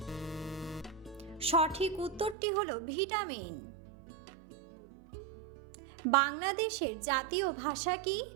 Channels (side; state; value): left; drops out; at 2.4 s